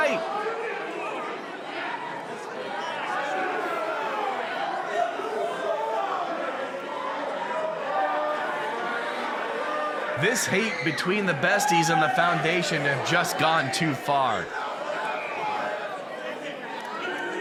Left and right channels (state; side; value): identical; both; correlation 1.00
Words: This hate between the besties and the Foundation have just gone too far.